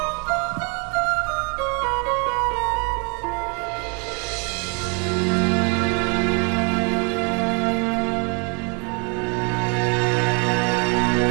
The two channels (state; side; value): quieter; left; 34.7 dB